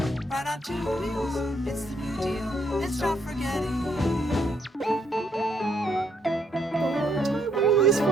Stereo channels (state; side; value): normal; both; correlation 0.72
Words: Right on 2 wheels, it's the new deal, and stop forgetting. What are these